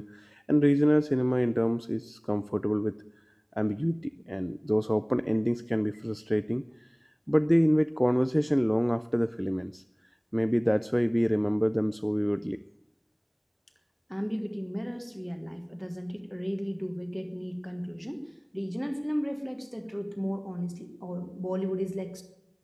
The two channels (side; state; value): both; identical; correlation 1.00